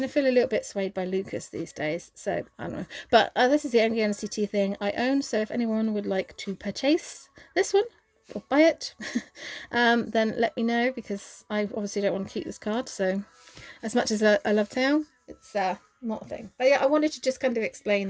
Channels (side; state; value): both; identical; correlation 1.00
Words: of feel a little bit swayed by Lucas these days, so I don't know. But this is the only NCT thing I own, so if anyone would like to purchase this one or buy it, then let me know, because I obviously don't want to keep this card. So as much as I love Taeyong, it's not a thing. But yeah, I wanted to just kind of